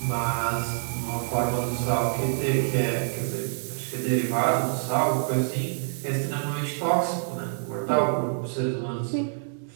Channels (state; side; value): silent; left; digital silence